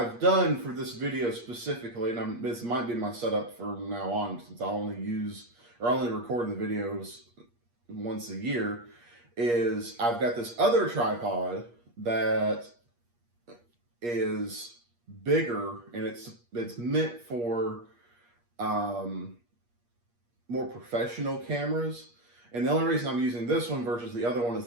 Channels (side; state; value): left; late; 8.5 ms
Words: done for this video specifically, and this might be my setup from now on, since I only use or only record the videos once a year, is I've got this other tripod that is bigger, and it's meant for more professional cameras. And the only reason I'm using this one versus the other one is